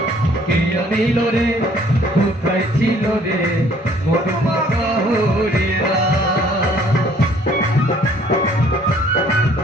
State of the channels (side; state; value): both; normal; correlation 0.59